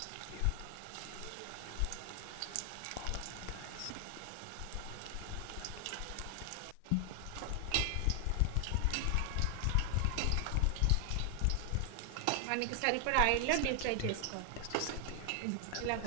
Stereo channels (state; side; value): different; both; correlation 0.00